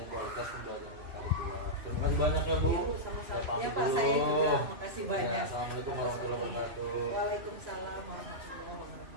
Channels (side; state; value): left; late; 3.0 ms